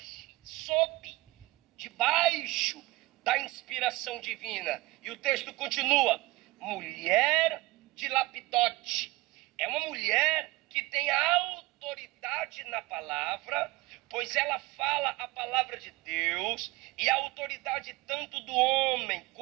debaixo da inspiração divina. E o texto continua, mulher de Lapidote, é uma mulher que tem autoridade na palavra, pois ela fala a palavra de Deus, e a autoridade tanto do homem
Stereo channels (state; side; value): quieter; left; 20.9 dB